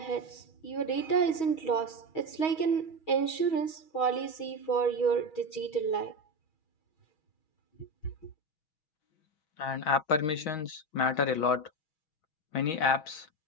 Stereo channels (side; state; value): right; late; 6.3 ms